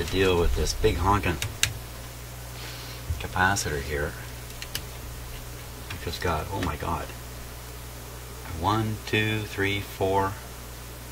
deal with this big honking capacitor here. I've just got, oh my god, 1, 2, 3, 4.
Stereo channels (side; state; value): both; identical; correlation 1.00